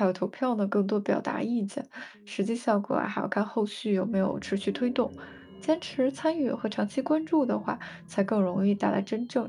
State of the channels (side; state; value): both; identical; correlation 1.00